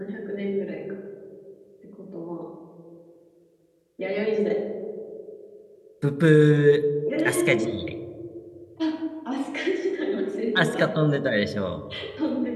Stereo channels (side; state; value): both; identical; correlation 1.00